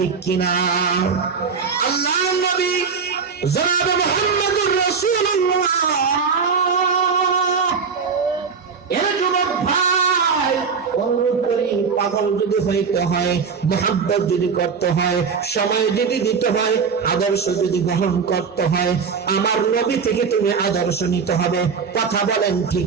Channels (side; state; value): left; quieter; 5.7 dB